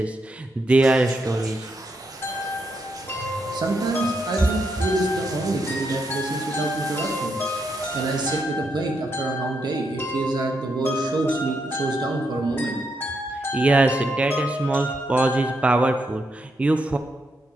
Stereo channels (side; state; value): both; normal; correlation 0.80